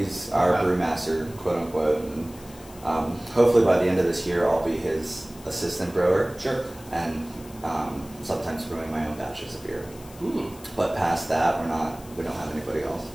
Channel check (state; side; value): noise; left; hiss, 21 dB below the sound